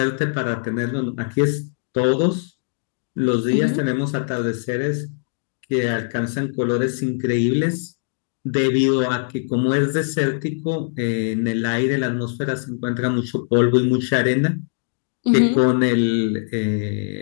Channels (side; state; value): right; silent; digital silence